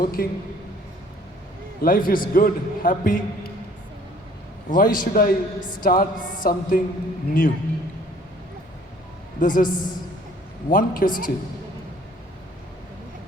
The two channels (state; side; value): normal; both; correlation 0.56